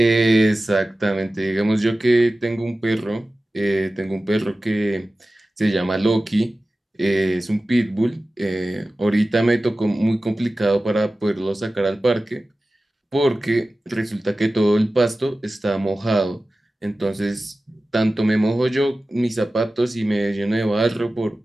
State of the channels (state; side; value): normal; both; correlation 0.96